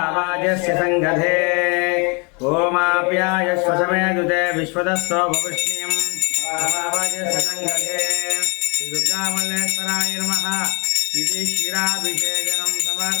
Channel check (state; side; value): quieter; right; 32.7 dB